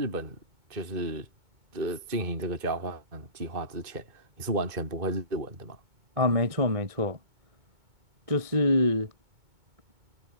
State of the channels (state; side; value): late; left; 2.2 ms